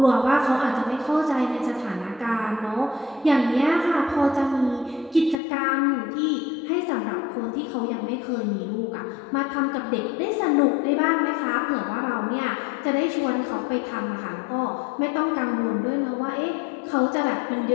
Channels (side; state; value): right; drops out; at 5.4 s